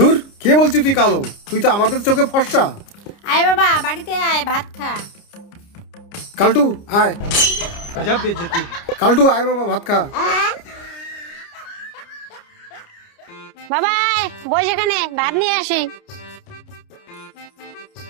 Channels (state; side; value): late; right; 29 ms